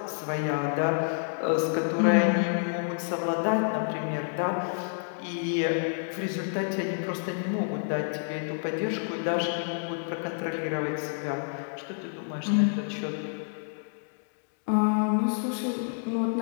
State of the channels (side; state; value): right; silent; digital silence